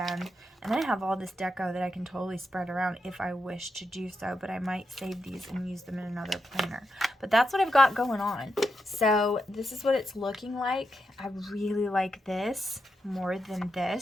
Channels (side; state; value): both; normal; correlation 0.86